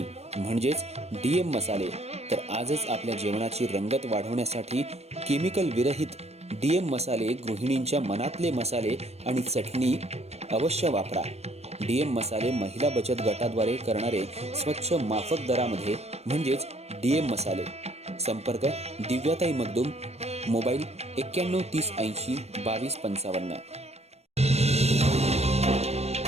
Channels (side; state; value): left; late; 0.31 ms